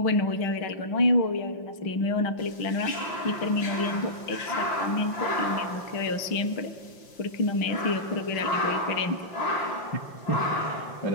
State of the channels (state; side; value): late; right; 5.7 ms